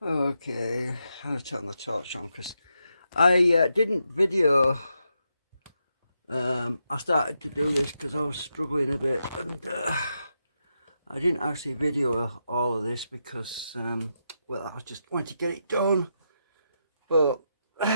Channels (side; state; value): both; inverted; correlation -0.84